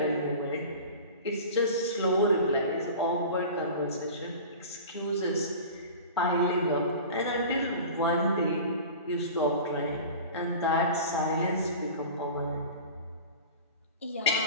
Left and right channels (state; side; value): inverted; both; correlation -0.37